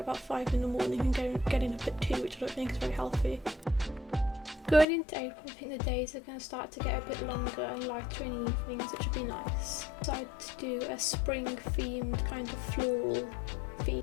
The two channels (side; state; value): right; drops out; at 4.9 s